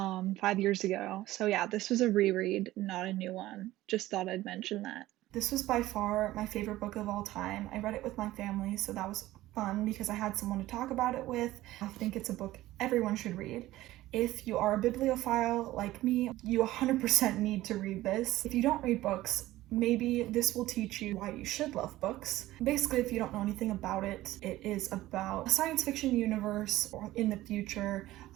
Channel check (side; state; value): left; quieter; 16.2 dB